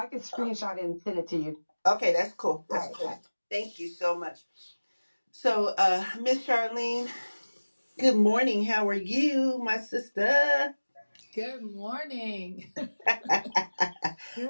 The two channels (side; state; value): both; inverted; correlation -1.00